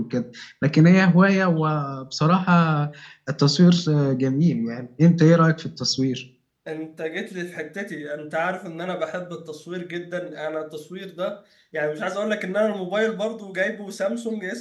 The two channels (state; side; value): identical; both; correlation 1.00